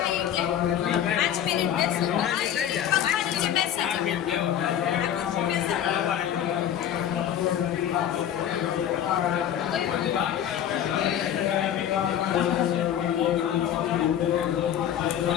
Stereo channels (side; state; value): right; quieter; 10.2 dB